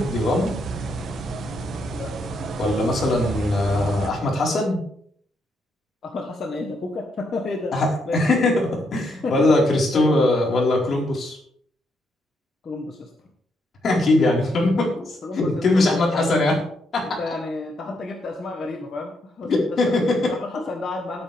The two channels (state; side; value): normal; both; correlation 0.77